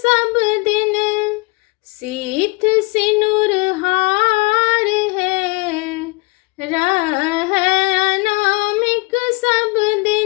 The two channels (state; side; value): quieter; right; 27.5 dB